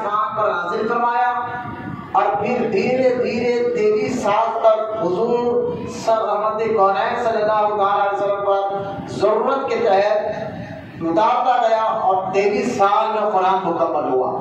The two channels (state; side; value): identical; both; correlation 1.00